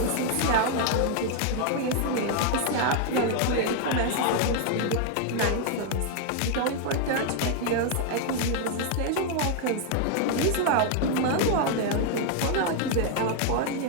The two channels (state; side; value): different; both; correlation 0.00